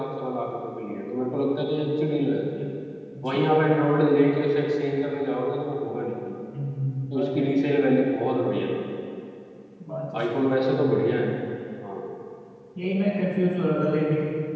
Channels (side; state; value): both; identical; correlation 1.00